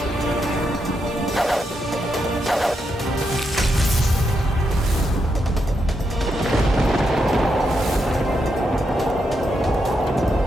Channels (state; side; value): normal; both; correlation 0.82